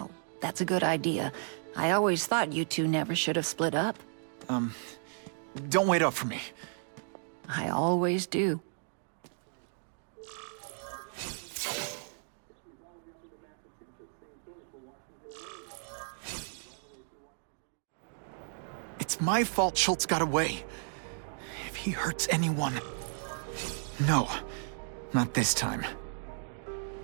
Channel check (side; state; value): left; silent; digital silence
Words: that's a good idea. I always thought you two never should have split up. Don't wait up for me. I always do. It's my fault Schultz got away. If he hurts anyone... No, not this time.